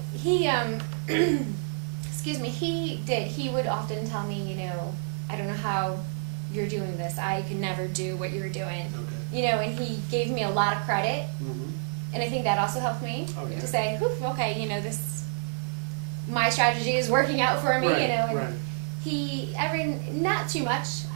he, excuse me, he did. He would often tell me, I don't know how you're doing this. I could never do what you're doing. Okay. And he gave me a lot of credit. Mm-hmm. And I think that also helped me Yeah. to say, okay, this, my strategy is working out for me, Right, and right. he, not too much.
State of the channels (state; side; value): silent; left; digital silence